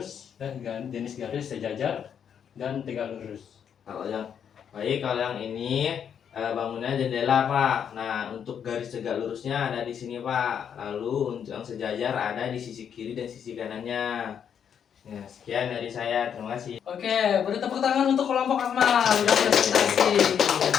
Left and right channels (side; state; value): right; quieter; 8.1 dB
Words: dan jenis garis sejajar dan tegak lurus. Kalau yang ini bangunan jendela Pak. Nah, untuk garis tegak lurusnya ada di sini Pak. Lalu untuk yang sejajar ada di sisi kiri dan sisi kanannya. Ya, sekian dari saya. Terima kasih. Oke, beri tepuk tangan untuk kelompok Akmal. Udah presentasi.